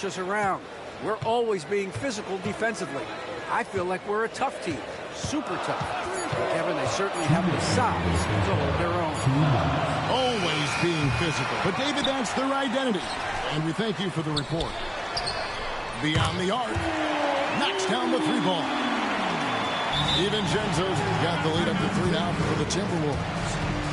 us around. We're always being physical defensively. I feel like we're a tough team, super tough." Kevin, they certainly have the size to hold their own. Always being physical. But, David, that's their identity. And we thank you for the report. Beyond the arc. Knocks down the 3 ball. DiVincenzo's got the lead up to 3 now for the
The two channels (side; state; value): both; identical; correlation 1.00